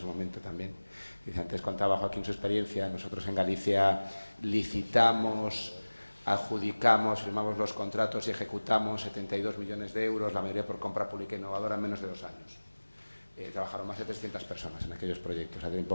momento también. Dice, antes contaba Joaquín su experiencia, nosotros en Galicia licitamos, adjudicamos, firmamos los contratos y ejecutamos 72 millones de euros, la mayoría por compra pública innovadora, en menos de 2 años. Trabajaron más de 300 personas en aquellos proyectos a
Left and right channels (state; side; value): inverted; both; correlation -1.00